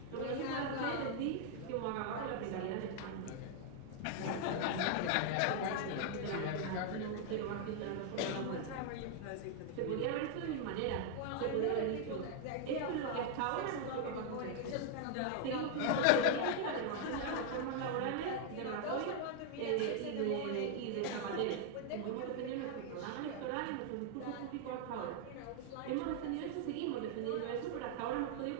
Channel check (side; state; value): both; different; correlation 0.00